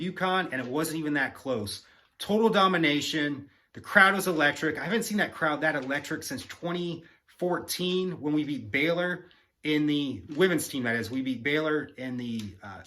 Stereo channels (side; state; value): both; identical; correlation 1.00